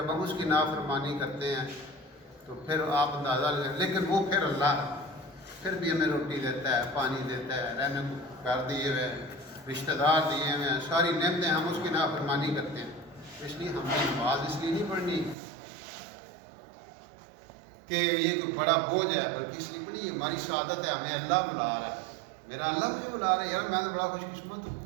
ہم اس کی نافرمانی کرتے ہیں تو پھر آپ اندازہ لیں. لیکن وہ پھر اللہ ہے, پھر بھی ہمیں روٹی دیتا ہے, پانی دیتا ہے, رہنے کو گھر دیے ہوئے ہیں, رشتہ دار دیے ہوئے ہیں, ساری نعمتیں, ہم اس کی نافرمانی کرتے ہیں. اس لیے ہم نے نماز اس لیے نہیں پڑھنی کہ یہ کوئی بڑا بوجھ ہے, بلکہ اس لیے پڑھی یہ ہماری سعادت ہے, ہمیں اللہ بلا رہا ہے. میرا اللہ مجھے بلا رہا ہے, یار میں تو بڑا خوش قسمت ہوں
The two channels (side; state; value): left; drops out; at 15.4 s